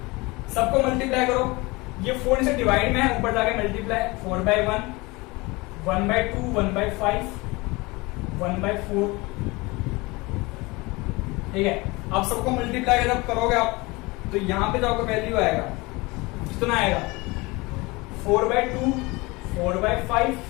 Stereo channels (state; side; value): quieter; right; 23.9 dB